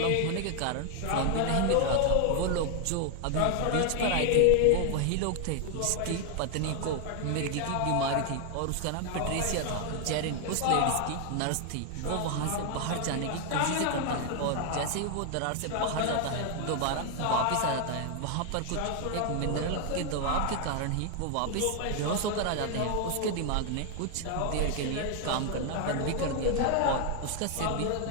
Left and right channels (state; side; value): different; both; correlation 0.00